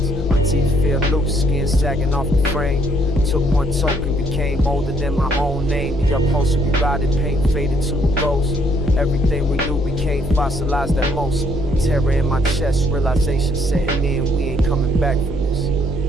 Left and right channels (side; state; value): both; normal; correlation 0.68